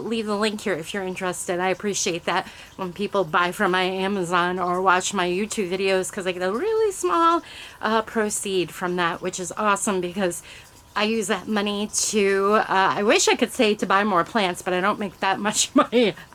the link here if you're interested. I appreciate that when people buy from my Amazon or watch my YouTube videos, because I get a really small proceed from that, which is awesome, because I use that money to, I wish I could say to buy more plants, but I don't make that much money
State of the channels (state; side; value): identical; both; correlation 1.00